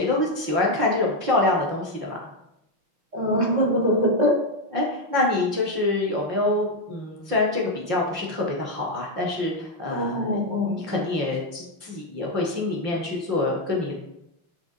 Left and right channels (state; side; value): late; left; 5.7 ms